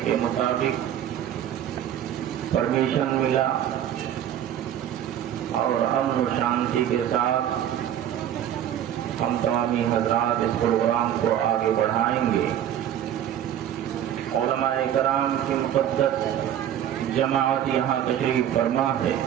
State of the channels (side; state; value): left; quieter; 10.6 dB